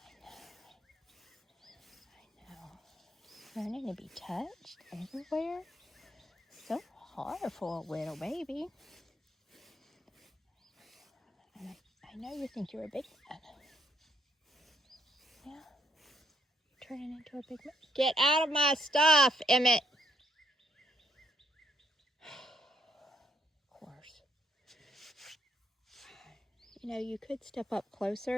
I know. Learning to be touched everywhere. So hard for a little baby. And I know you think you're a big man. Yeah. Turning into a big man. Get out of my stuff, Emmett. Of course. You know, you could step up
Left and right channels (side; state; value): both; normal; correlation 0.72